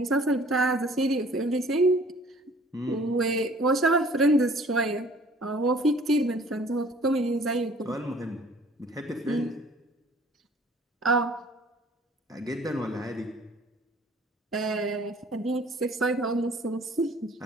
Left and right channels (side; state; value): both; normal; correlation 0.53